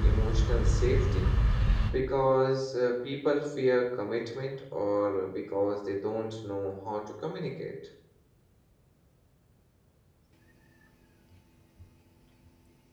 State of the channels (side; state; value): both; identical; correlation 1.00